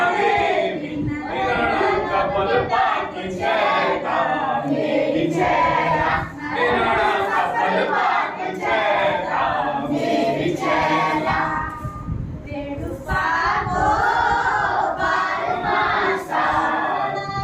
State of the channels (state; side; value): identical; both; correlation 1.00